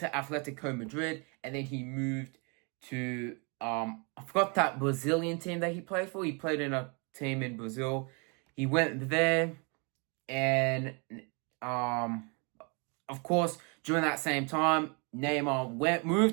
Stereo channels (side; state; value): left; quieter; 33.9 dB